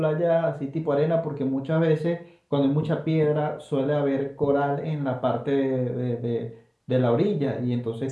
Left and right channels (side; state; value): both; identical; correlation 1.00